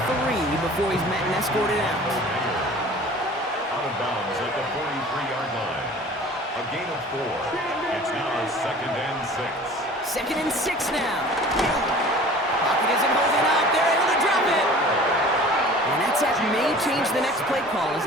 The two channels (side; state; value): both; normal; correlation 0.44